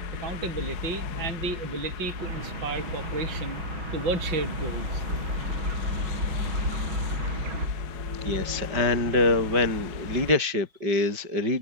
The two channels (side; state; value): left; late; 5.5 ms